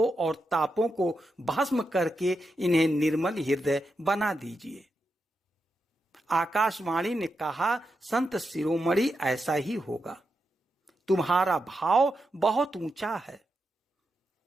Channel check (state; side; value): normal; both; correlation 0.86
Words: और तापों को भस्म करके इन्हें निर्मल हृदय बना दीजिए। आकाशवाणी ने कहा, संत शिरोमणि, ऐसा ही होगा। तुम्हारा भाव बहुत ऊंचा है।